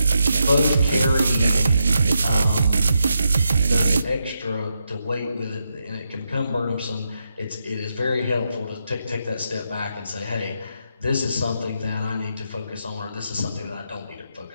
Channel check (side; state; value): both; inverted; correlation -0.83